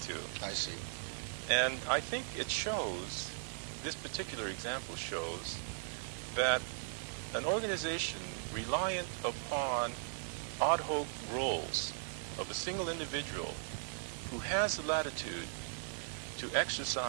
to. I see. And I think it shows, this particular example shows, that an organization reliant upon ad hoc roles of a single individual who has the latitude to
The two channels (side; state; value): left; silent; 52 dB below the other